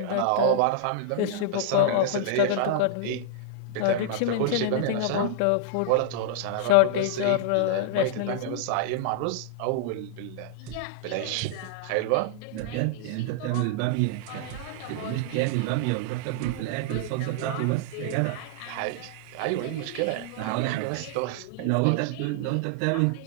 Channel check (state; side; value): different; both; correlation -0.01